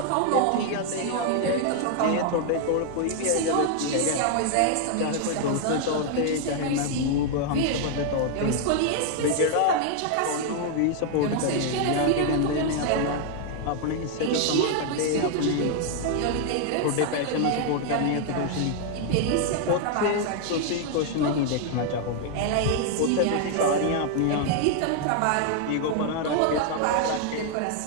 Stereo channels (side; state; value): both; different; correlation 0.00